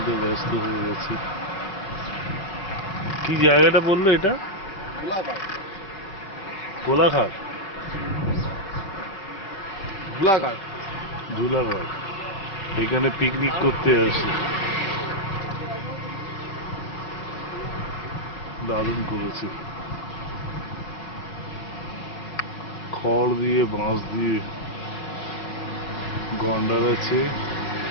ব্যস্ত হয়ে গেছে। কি জায়গাটা বললো এটা? কোলাঘাট, ধুলাঘাট। ধুলাঘাট। এখানে পিকনিক করতে আসে। দারুণ করেছে, খড় দিয়ে বাঁশ দিয়ে গন্ডার আছে,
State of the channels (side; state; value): right; late; 5.1 ms